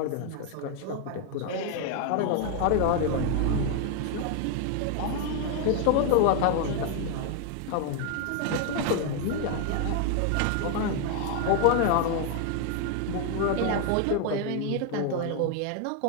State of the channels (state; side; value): different; both; correlation 0.01